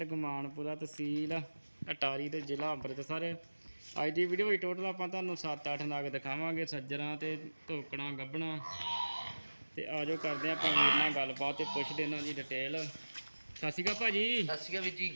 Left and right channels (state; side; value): inverted; both; correlation -1.00